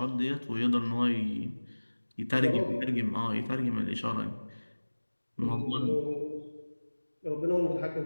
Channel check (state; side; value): inverted; both; correlation -1.00